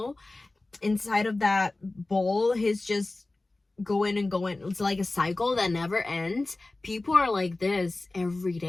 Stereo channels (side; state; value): right; quieter; 3.0 dB